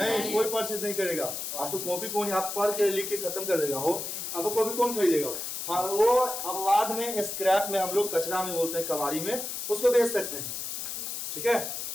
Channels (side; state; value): left; noise; hiss, 5 dB below the sound